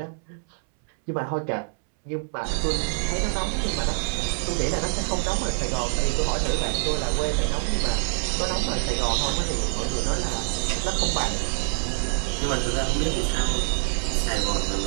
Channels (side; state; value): left; silent; 61 dB below the other